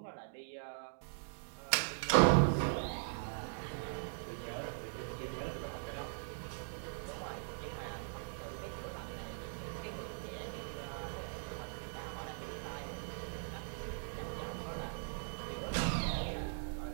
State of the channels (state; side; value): silent; left; digital silence